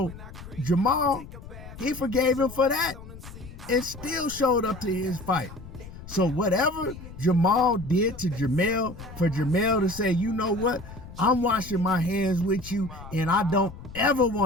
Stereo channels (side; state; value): left; noise; rumble, 15 dB below the sound